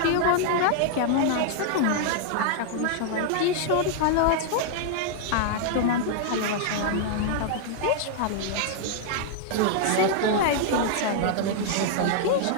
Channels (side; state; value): both; different; correlation -0.01